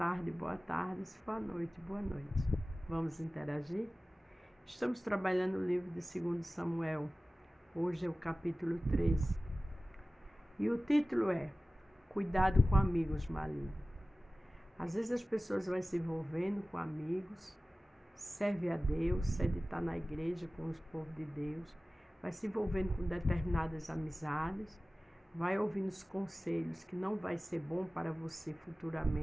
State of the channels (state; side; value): normal; both; correlation 0.97